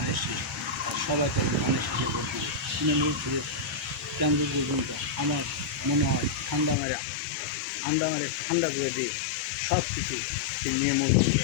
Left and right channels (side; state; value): right; drops out; at 6.8 s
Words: শীষ। আর সবাই তাকে ধানের শীষের ভোট দিবে। তৃণমূল থেকে কেন্দ্র পর্যন্ত আমার মনে হয় ঠান্ডা করে দিয়ে সব কিছু তিনি নিয়মন